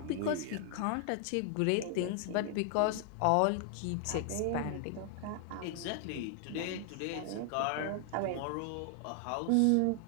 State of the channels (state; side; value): different; both; correlation 0.00